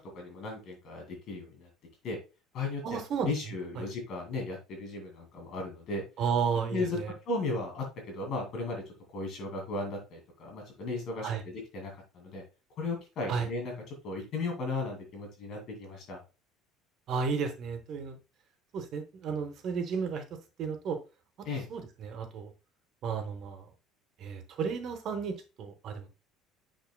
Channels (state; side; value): normal; both; correlation 0.45